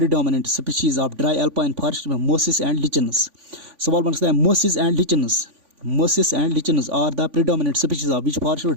species of dry alpine forest में मोसिस एंड लिचन्स। सवाल बन सकता है mosses and lichens are the predominant species of which forest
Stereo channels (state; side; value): late; left; 3.5 ms